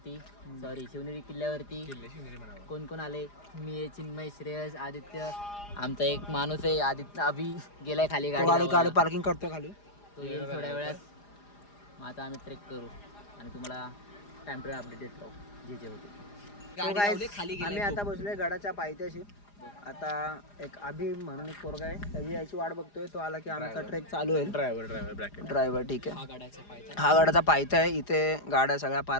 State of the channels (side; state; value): right; late; 4.9 ms